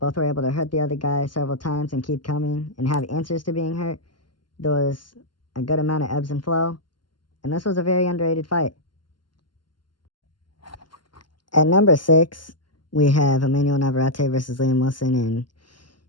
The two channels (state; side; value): late; right; 0.71 ms